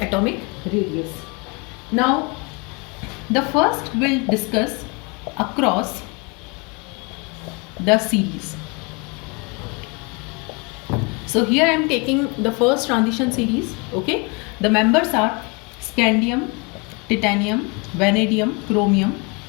atomic radius. Now the first we'll discuss across the series. So here I am taking the first transition series. Okay, the members are scandium, titanium, vanadium, chromium,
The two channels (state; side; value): quieter; right; 30.5 dB